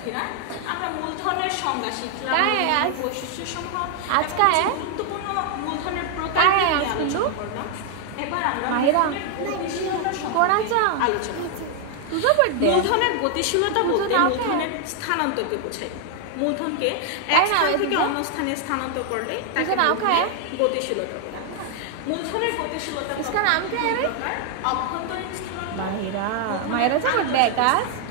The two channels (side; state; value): both; different; correlation 0.00